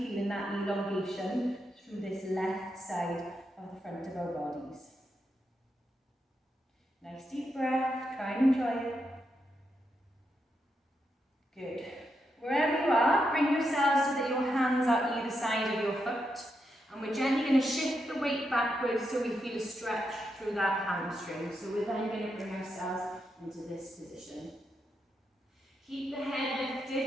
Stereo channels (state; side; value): normal; both; correlation 0.83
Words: that elongation through this left side of the front of our bodies. Nice deep breath, try and enjoy it. Good. Wherever you are, bring yourselves so that your hands are either side of your foot, and we're gently going to shift the weight backwards so we feel a stretch through that hamstring. So we're then going to bring ourselves into this position. Keep the head